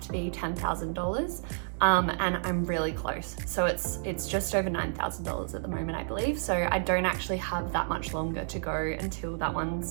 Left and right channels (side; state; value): left; silent; digital silence